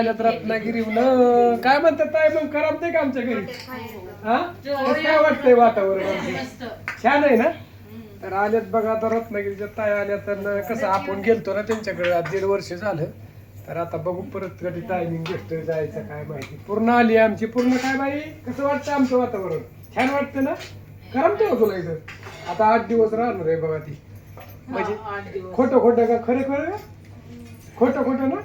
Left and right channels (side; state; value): both; identical; correlation 1.00